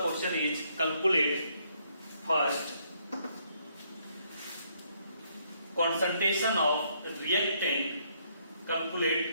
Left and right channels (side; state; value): both; inverted; correlation -0.71